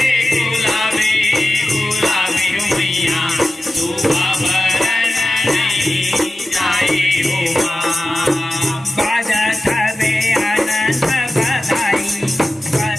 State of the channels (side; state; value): both; normal; correlation 0.94